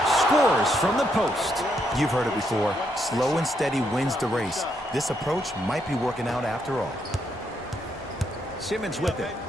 Scores from the post. You've heard it before. Slow and steady wins the race. This approach might be working out after all. Simmons with it.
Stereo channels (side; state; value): both; normal; correlation 0.77